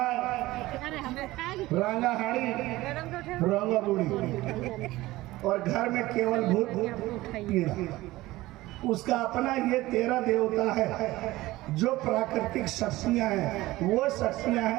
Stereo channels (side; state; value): left; quieter; 18.1 dB